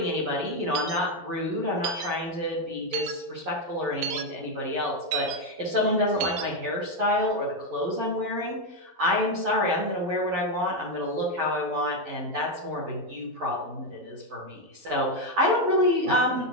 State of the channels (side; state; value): left; late; 11 ms